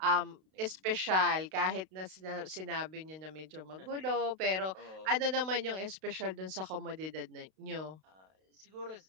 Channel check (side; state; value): left; late; 32 ms